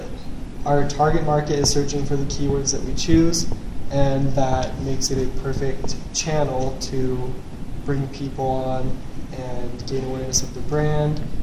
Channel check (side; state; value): both; identical; correlation 1.00